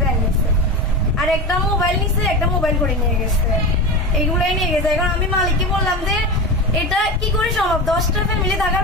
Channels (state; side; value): normal; both; correlation 0.24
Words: ব্যাংক নিছে। আর একটা মোবাইল নিছে, একটা মোবাইল করে নিয়ে গেছে। এগুলোই নিয়ে গেছে। এখন আমি মালিককে বললাম যে এটা কি করে সম্ভব? 10টা ফ্যামিলি